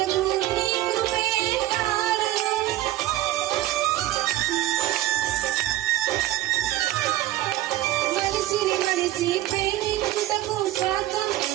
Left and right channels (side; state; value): left; quieter; 14.7 dB